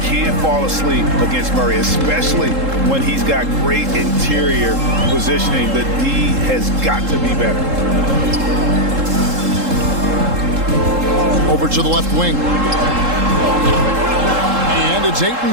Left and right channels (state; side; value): late; left; 3.7 ms